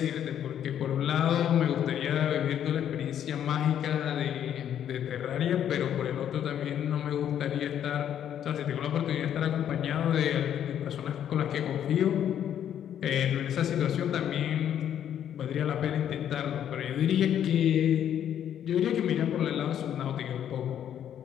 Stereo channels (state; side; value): quieter; right; 9.9 dB